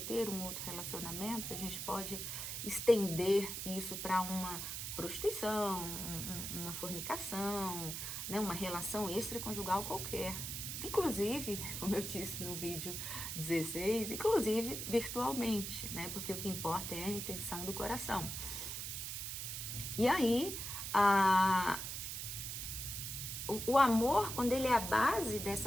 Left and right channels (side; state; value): right; noise; hiss, 5 dB below the sound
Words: um outro relacionamento, a gente pode estender isso para uma prostituição, uma fornicação, né, uma relação extraconjugal qualquer. Inclusive, como eu disse no vídeo 16, inclusive virtualmente, né, porque o que importa é a intenção do coração. E aí, o amor, quando ele é a base